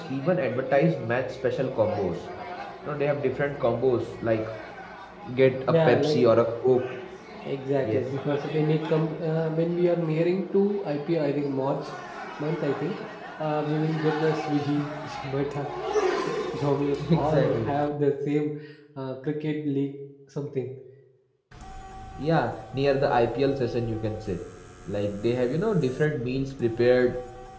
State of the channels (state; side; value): identical; both; correlation 1.00